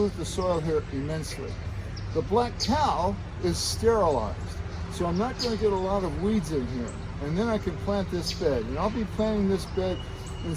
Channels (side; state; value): both; identical; correlation 1.00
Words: the soil here immensely. The black cow is sterilized, so I'm not going to get a lot of weeds in here. And then I can plant this bed. And I'll be planting this bed in